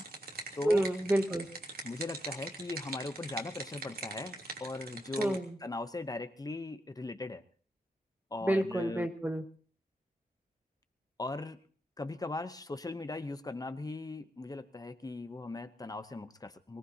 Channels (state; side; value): normal; both; correlation 0.84